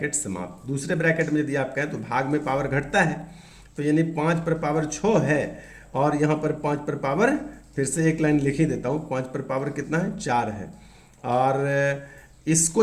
समाप्त। दूसरे ब्रैकेट में यदि आप कहें तो भाग में पावर घटता है, तो यानी 5 पर पावर 6 है और यहाँ पर 5 पर पावर फिर से एक लाइन लिख ही देता हूँ, 5 पर पावर कितना है 4 है, और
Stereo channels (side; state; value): both; identical; correlation 1.00